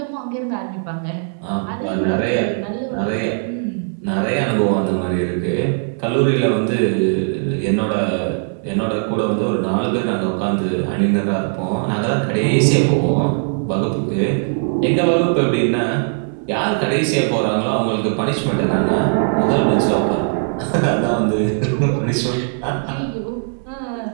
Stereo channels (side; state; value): left; silent; digital silence